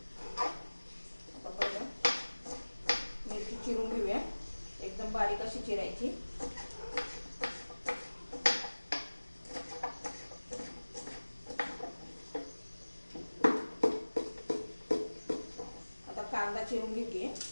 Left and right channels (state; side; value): inverted; both; correlation -1.00